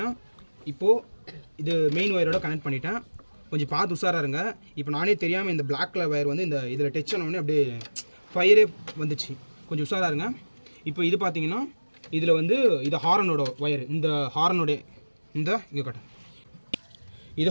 இப்போது இது மெயின் ஒயரோட கனெக்ட் பண்ணிட்டேன். கொஞ்சம் பார்த்து உஷாராக இருங்க. இப்போ நானே தெரியாமல் இந்த பிளாக் கலர் ஒயர் வந்து இதில் டச் ஆனோடனே அப்படியே ஃபயரே வந்துச்சு. கொஞ்சம் உஷாராக இருங்க. இப்போ இது பார்த்தீங்கன்னா இதில் வந்து இது ஹாரனோட ஒயர். இந்த ஹாரனோடைய இங்கே கட்டும். இது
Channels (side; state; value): both; inverted; correlation -1.00